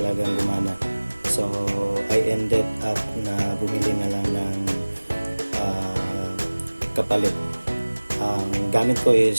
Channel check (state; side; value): inverted; both; correlation -1.00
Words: gumana. So, I ended up na bumili na lang ng kapalit. Ang gamit ko is